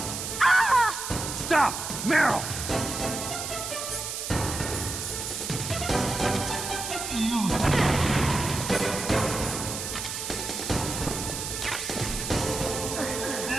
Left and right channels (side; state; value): right; noise; hiss, 5 dB below the sound